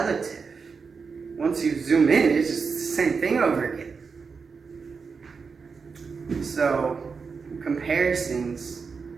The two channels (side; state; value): left; quieter; 5.2 dB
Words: Once you zoom in, it's just the same thing over again. So comparisons,